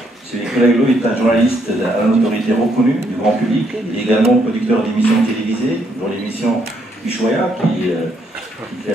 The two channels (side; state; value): both; normal; correlation 0.73